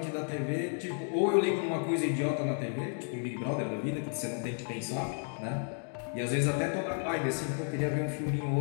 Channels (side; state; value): right; silent; 56 dB below the other